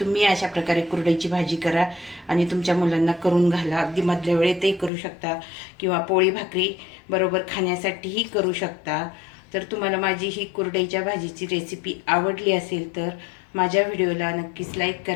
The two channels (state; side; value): drops out; right; at 4.9 s